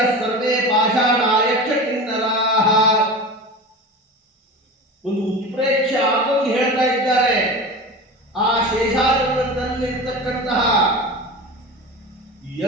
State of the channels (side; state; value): both; normal; correlation 0.30